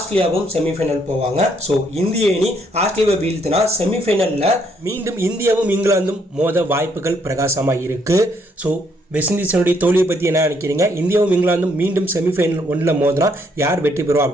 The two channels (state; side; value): normal; both; correlation 0.70